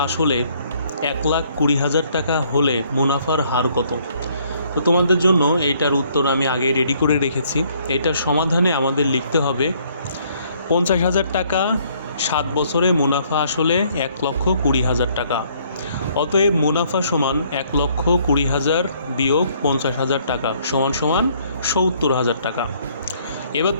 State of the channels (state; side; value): inverted; both; correlation -0.64